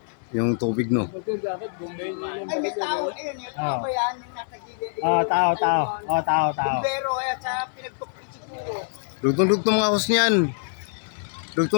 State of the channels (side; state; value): right; silent; 62 dB below the other